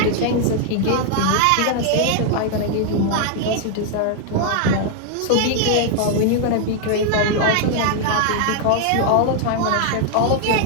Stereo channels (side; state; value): both; different; correlation 0.00